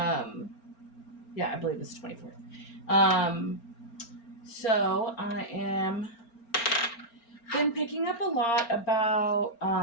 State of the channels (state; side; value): late; right; 4.4 ms